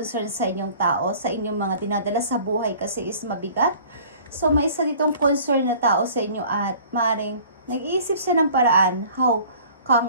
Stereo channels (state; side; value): inverted; both; correlation -0.49